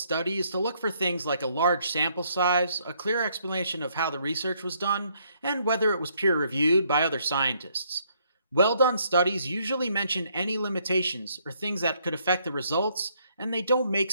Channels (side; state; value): both; inverted; correlation -0.70